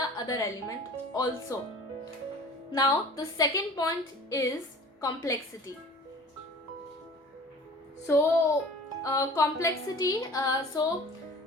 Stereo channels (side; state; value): both; normal; correlation 0.44